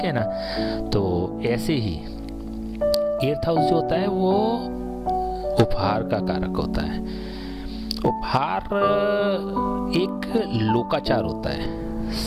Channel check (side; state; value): both; identical; correlation 1.00